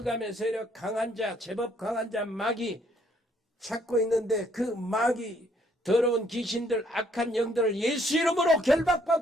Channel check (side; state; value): both; normal; correlation 0.67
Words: 세력, 강한 자, 제법 강한 자, 마귀 찾고 있는데 그 마귀, 더러운 귀신들, 악한 영들을 예수 이름으로